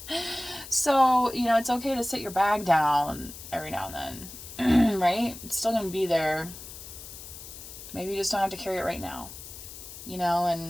so, it's okay to sit your bag down every now and then, right? It's still going to be there. Maybe you just don't have to carry it right now,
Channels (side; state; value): left; noise; hiss, 13 dB below the sound